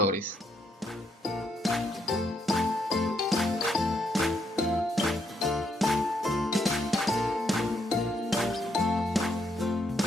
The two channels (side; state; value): both; normal; correlation 0.75